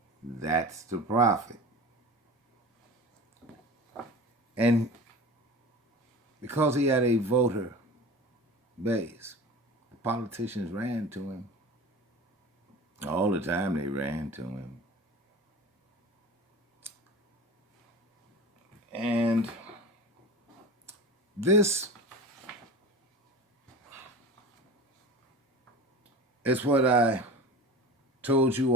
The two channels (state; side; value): normal; both; correlation 0.35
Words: That's the prophet. And because he had a voter base, politicians ran to him. All the time they ran to him. And this is what I told you